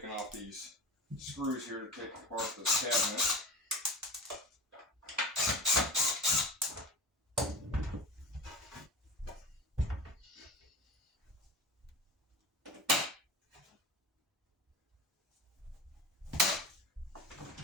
off these screws here to take apart this cabinet.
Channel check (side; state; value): both; normal; correlation 0.32